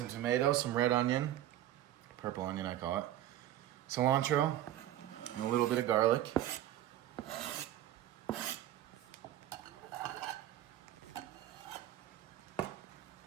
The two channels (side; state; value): left; quieter; 12.9 dB